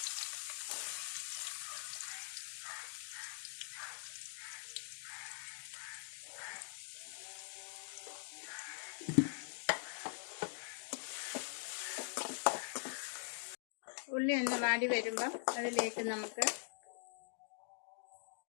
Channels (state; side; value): silent; right; digital silence